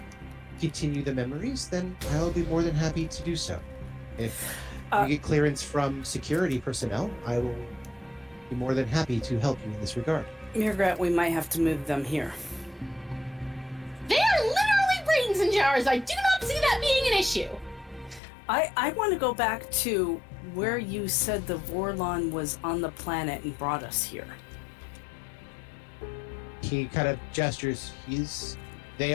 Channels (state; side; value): drops out; right; at 18.2 s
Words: continue the memories, then I'll be more than happy to do so. If you get clearance from security personnel, I will be more than happy to help you in this regard. mrr'grr'rat, we might have to move them here. They are literally brains in jars. I do not see that being an issue. I want to go back to where you said the Vorlon was on the planet and brought us here. He kind of gestures. They